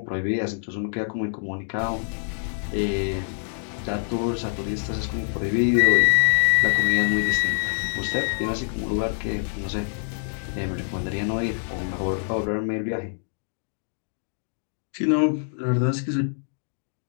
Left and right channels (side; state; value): right; silent; digital silence